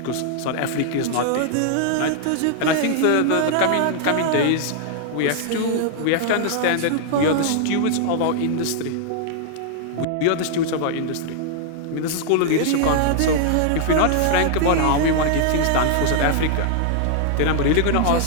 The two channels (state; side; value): different; both; correlation -0.01